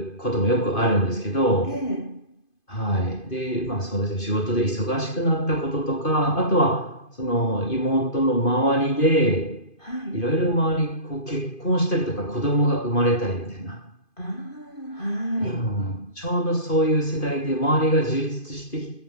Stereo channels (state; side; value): late; right; 2.5 ms